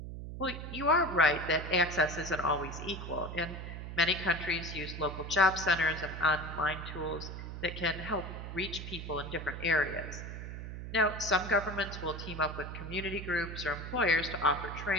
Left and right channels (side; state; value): right; noise; hum, 8 dB below the sound